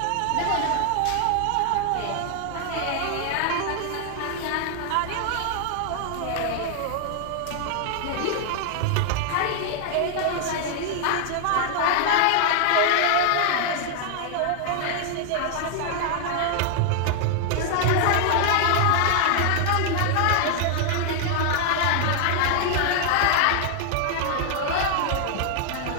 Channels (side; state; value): both; different; correlation 0.00